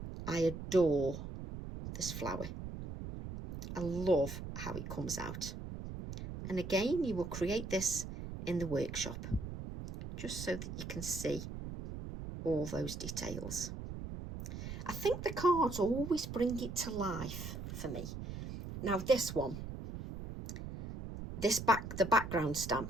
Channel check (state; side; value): noise; right; rumble, 8 dB below the sound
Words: I adore this flower. I love how it comes out. And again, you will create this in the workshop, just so that you can see all those details. I think the cards always bring it to life for me. Now this one, the background